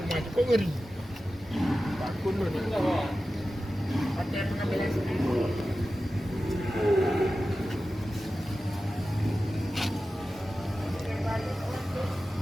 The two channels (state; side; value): normal; both; correlation 0.94